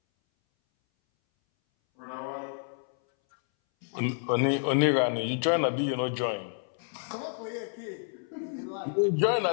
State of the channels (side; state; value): right; silent; 58 dB below the other